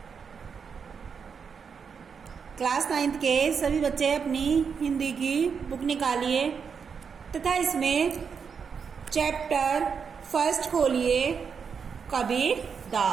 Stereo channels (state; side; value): quieter; left; 6.3 dB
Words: क्लास नाइन्थ के सभी बच्चे अपनी हिंदी की बुक निकालिए तथा इसमें चैप्टर फर्स्ट खोलिए कबीर